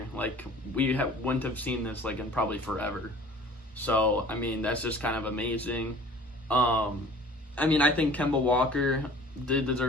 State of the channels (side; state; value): both; normal; correlation 0.47